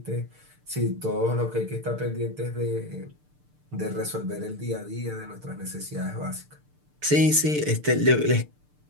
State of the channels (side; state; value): left; late; 6.7 ms